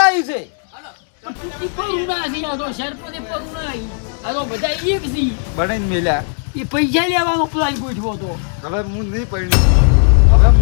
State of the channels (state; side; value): silent; right; 62 dB below the other